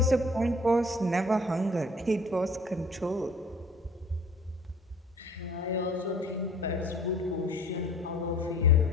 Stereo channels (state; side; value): normal; both; correlation 0.50